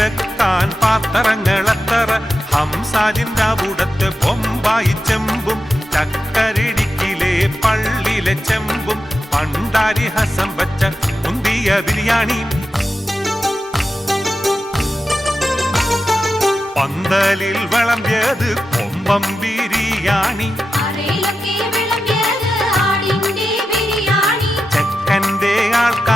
പാത്രങ്ങളെത്തറ, ഹംസാജിന്റെ അവിടത്തെ ബൊമ്പായി ചെമ്പും, ചക്കരടിക്കിലെ പള്ളിയിലെ ചെമ്പും, പണ്ടാരി ഹസം വച്ച മുന്തിയ ബിരിയാണി, പന്തലിൽ വിളമ്പിയത് കൊമ്പം ബിരിയാണി, ചെക്കന്റെ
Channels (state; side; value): normal; both; correlation 0.91